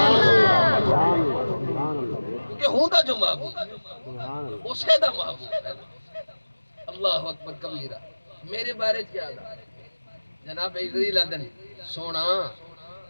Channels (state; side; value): inverted; both; correlation -1.00